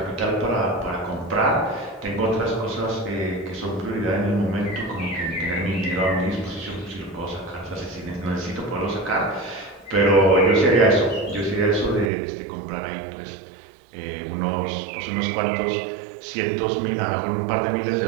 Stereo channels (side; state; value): left; drops out; at 12.1 s